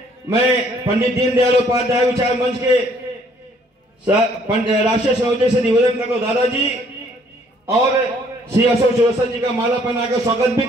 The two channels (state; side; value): normal; both; correlation 0.63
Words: मैं पंडित दीनदयाल उपाध्याय विचार मंच के राष्ट्रीय संयोजक से निवेदन करता हूं दादाजी और श्री अशोक चौरसिया जी का माला पहनाकर स्वागत भी